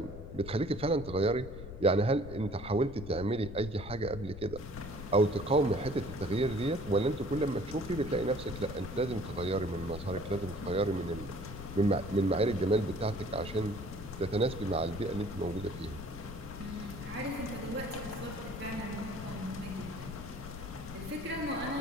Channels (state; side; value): noise; left; rumble, 11 dB below the sound